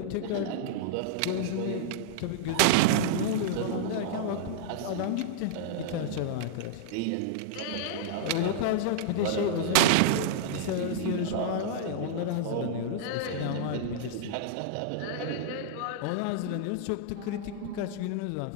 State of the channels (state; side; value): different; both; correlation -0.02